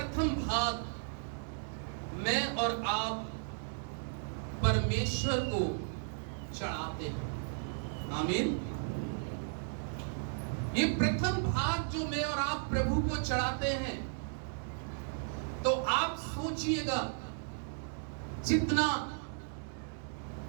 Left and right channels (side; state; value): left; silent; digital silence